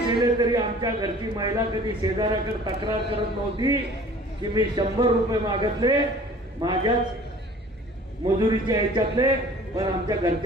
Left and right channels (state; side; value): normal; both; correlation 0.48